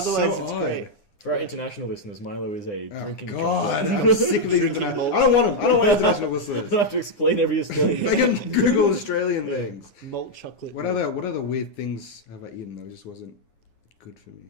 so it's odd. great. For our international listeners, Milo is a Oh, drinking God, chocolate. I'm sick of these international. I don't want them. I don't want international I listeners. don't have to explain every Australian. They can Google Australian things. Malt chocolate. What other weird things have I eaten that just wasn't good for me?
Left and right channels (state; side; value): late; right; 9.8 ms